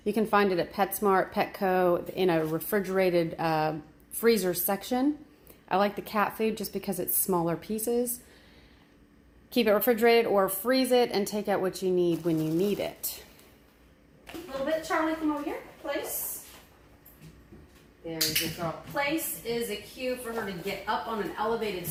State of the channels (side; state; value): both; identical; correlation 1.00